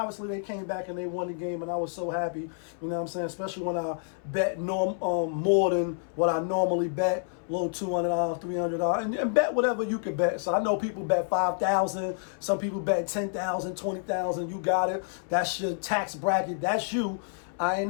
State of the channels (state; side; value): silent; right; 59 dB below the other